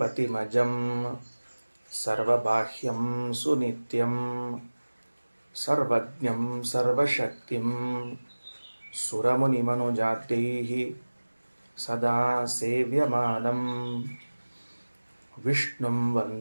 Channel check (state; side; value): inverted; both; correlation -1.00